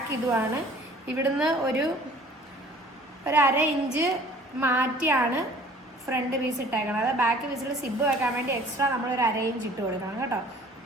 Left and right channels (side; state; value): both; normal; correlation 0.51